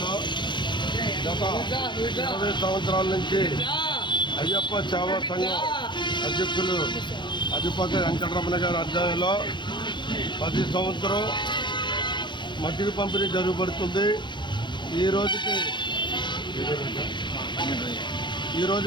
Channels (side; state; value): right; late; 0.22 ms